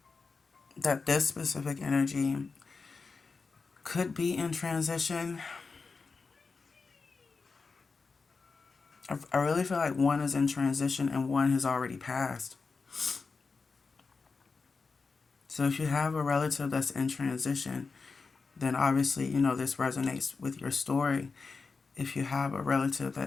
that this specific energy could be in transition. I really feel like one is in transition and one has already passed. So if you have a relative that's in transition, then obviously, this resonates with your story. If you have a relative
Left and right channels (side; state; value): right; quieter; 4.5 dB